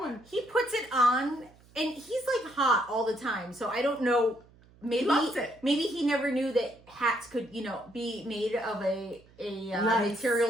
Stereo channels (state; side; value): noise; right; hum, 27 dB below the sound